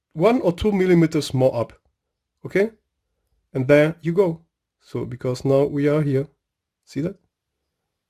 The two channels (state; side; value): identical; both; correlation 1.00